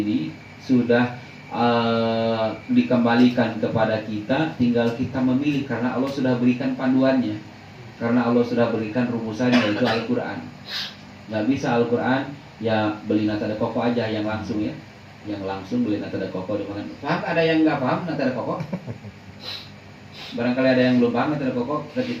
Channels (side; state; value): both; identical; correlation 1.00